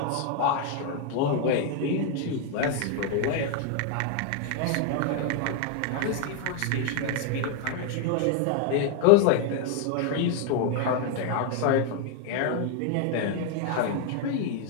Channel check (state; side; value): different; both; correlation 0.00